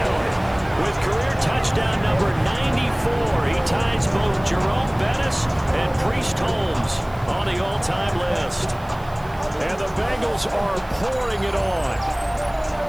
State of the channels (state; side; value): noise; right; hiss, 26 dB below the sound